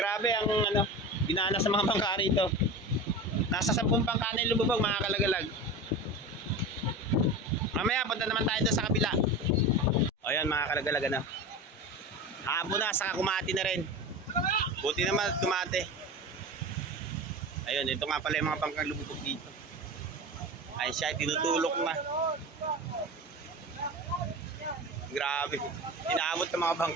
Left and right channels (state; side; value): normal; both; correlation 0.29